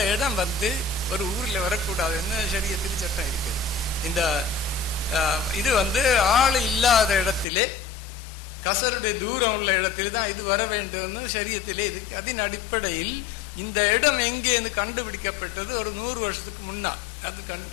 இடம் வந்து ஒரு ஊரில் வரக்கூடாதுன்னு ஷரியத்தில் சட்டம் இருக்குது. இந்த இது வந்து ஆள் இல்லாத இடத்திலே கசருடைய தூரம் உள்ள இடத்துல தான் இது வர வேண்டும்னு ஷரியத்திலே இருக்கு. அதன் அடிப்படையில் இந்த இடம் எங்கே கண்டுபிடிக்கப்பட்டது ஒரு 100 வருஷத்துக்கு முன்னால்.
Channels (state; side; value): drops out; right; at 7.5 s